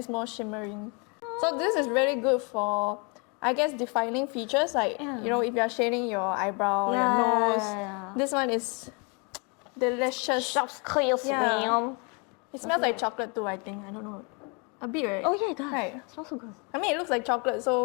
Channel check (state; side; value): quieter; right; 33.2 dB